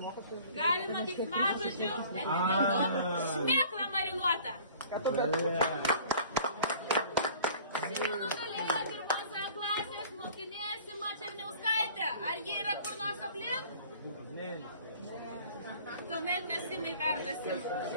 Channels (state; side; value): inverted; both; correlation -0.49